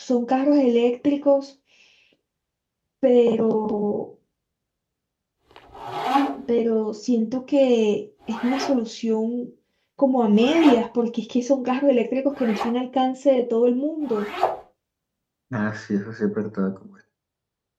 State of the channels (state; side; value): identical; both; correlation 1.00